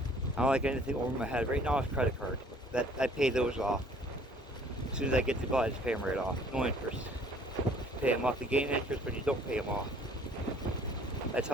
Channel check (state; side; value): normal; both; correlation 0.57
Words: I don't like anything over my head. Right now it's credit card. That I pay those off. As soon as I get the bill, I just pay them right off. No interest. Pay them off to gain interest, but you don't pay them off. That's